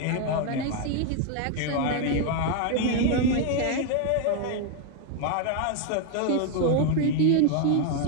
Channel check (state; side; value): different; both; correlation 0.00